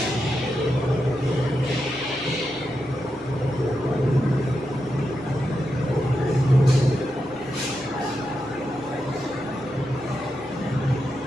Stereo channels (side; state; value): left; noise; hum, 29 dB below the sound